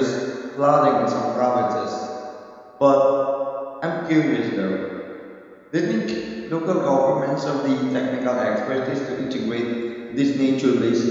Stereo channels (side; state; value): both; identical; correlation 1.00